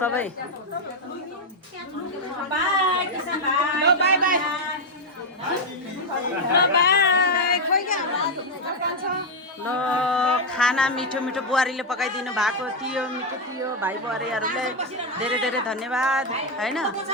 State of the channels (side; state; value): both; normal; correlation 0.03